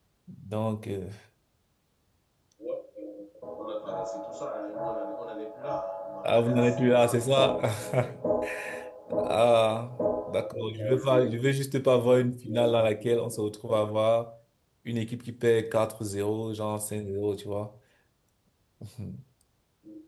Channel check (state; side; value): identical; both; correlation 1.00